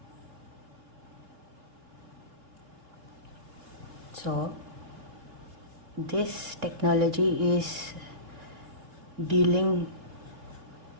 So this technology is dealing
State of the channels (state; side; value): late; left; 3.6 ms